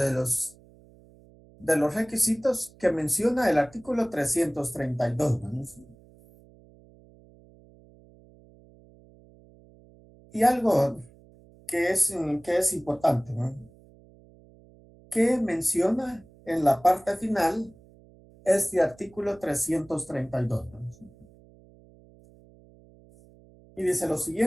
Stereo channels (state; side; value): noise; right; hum, 26 dB below the sound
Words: los requisitos que menciona el artículo 332, ¿no? Y algo que es importante, ¿no? Que menciona en la parte final este artículo 332, ¿no? Y dice lo